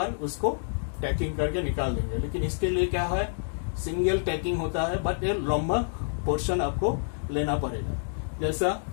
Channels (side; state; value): right; silent; digital silence